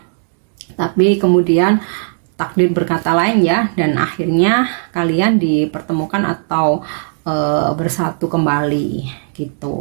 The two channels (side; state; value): left; silent; digital silence